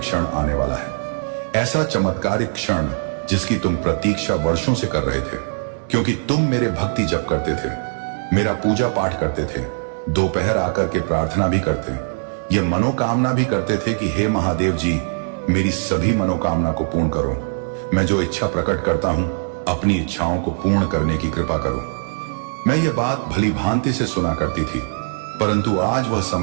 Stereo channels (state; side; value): silent; left; digital silence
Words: आने वाला है। ऐसा चमत्कारिक क्षण जिसकी तुम प्रतीक्षा वर्षों से कर रहे थे, क्योंकि तुम मेरे भक्ति जप करते थे, मेरा पूजा पाठ करते थे, दोपहर आकर के प्रार्थना भी करते, ये मनोकामना भी करते थे कि हे महादेव जी मेरी सभी मनोकामना को पूर्ण करो। मैं जो इच्छा प्रकट करता हूं अपनी इच्छाओं को पूर्ण करने की कृपा करो। मैं ये बात भली भांति से सुना करती थी, परंतु आज वह